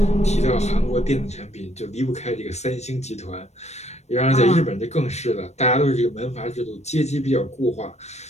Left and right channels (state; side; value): late; right; 0.32 ms